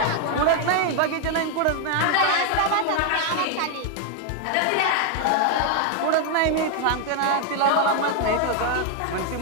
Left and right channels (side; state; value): both; different; correlation 0.00